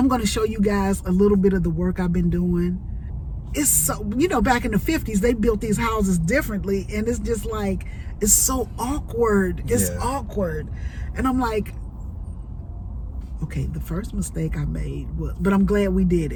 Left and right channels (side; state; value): both; identical; correlation 1.00